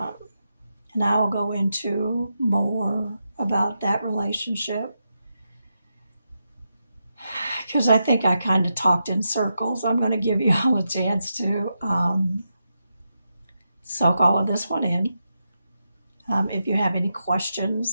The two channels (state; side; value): inverted; both; correlation -0.86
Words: I will go into more about that relationship because I think I kind of talked in circles. I'm going to give you all a chance to soak all of this one in. If you have any